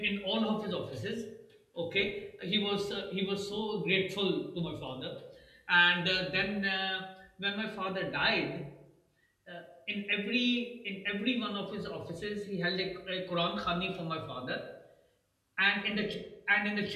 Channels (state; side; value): identical; both; correlation 1.00